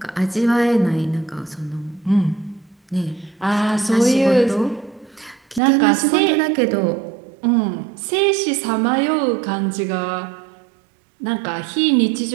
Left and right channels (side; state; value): left; drops out; at 5.6 s